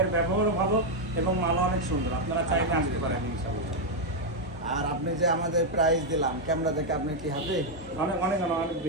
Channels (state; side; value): normal; both; correlation 0.00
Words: ব্যবহারও ভালো এবং মালও অনেক সুন্দর। আপনারা চাইলে আসতে পারেন ইনশাআল্লাহ। আর আপনি যে আমাদের প্রাইস দিলাম ক্যামেরা দেখে, আপনি কি হ্যাপি? অনেক অনেক অনেক